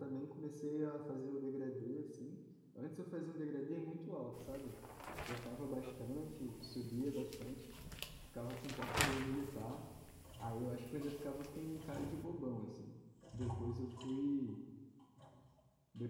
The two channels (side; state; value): both; identical; correlation 1.00